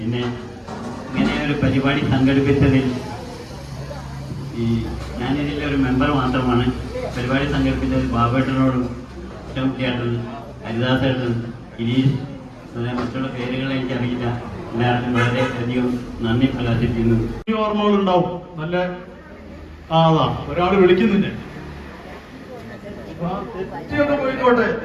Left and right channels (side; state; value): both; identical; correlation 1.00